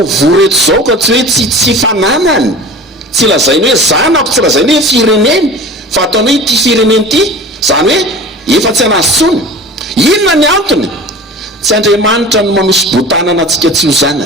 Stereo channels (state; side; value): normal; both; correlation 0.38